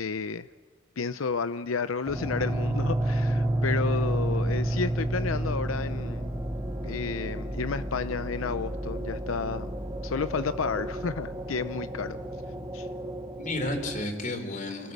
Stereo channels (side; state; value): both; normal; correlation 0.47